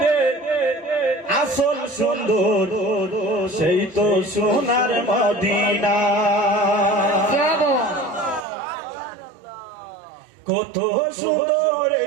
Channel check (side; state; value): left; drops out; at 8.5 s